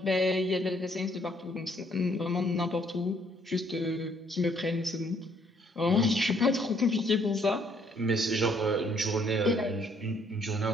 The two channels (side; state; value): both; normal; correlation 0.66